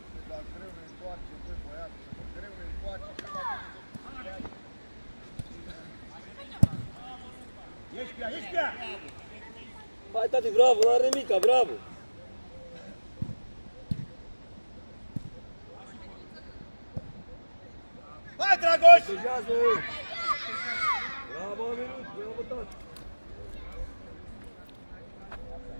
Dar greu ne întoarce, băi, băiatul. Greu ne întoarce. Ești pe ea! Hai, tati, bravo, n-are nimica, bravo. Hai, Dragoș! Protejează! Bravo, Aminut, bravo, tati.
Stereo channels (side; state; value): both; inverted; correlation -1.00